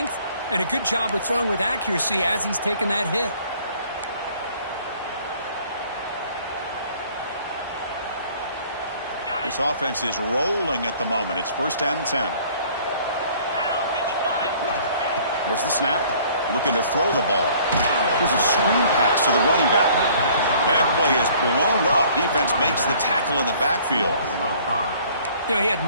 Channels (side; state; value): both; inverted; correlation -0.55